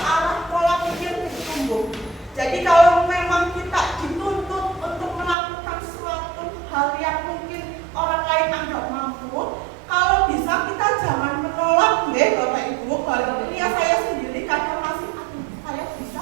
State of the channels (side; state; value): left; drops out; at 5.4 s